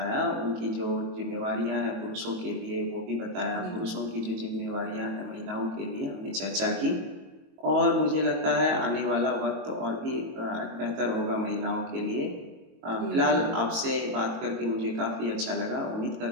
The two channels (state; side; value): late; left; 22 ms